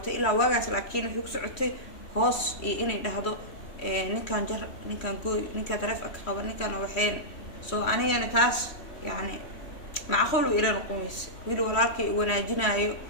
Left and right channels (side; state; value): right; late; 3.1 ms